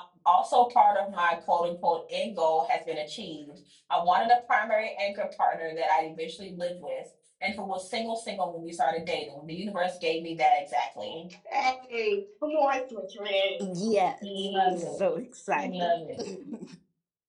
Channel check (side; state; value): both; identical; correlation 1.00